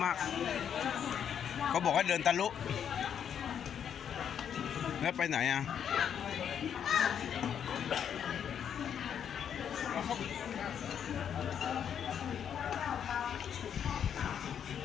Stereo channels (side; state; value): right; quieter; 8.5 dB